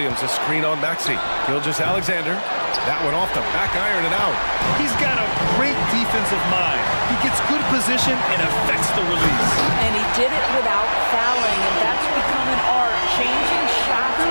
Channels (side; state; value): both; inverted; correlation -1.00